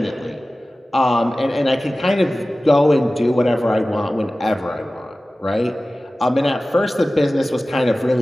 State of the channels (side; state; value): both; normal; correlation 0.97